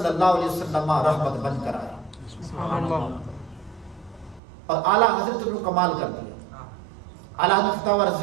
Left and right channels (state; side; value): drops out; left; at 4.4 s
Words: اللہ علیہ وسلم رحمت بن کر آیا اور اعلیٰ حضرت نے کمال کر دیا. اعلیٰ حضرت فتاوی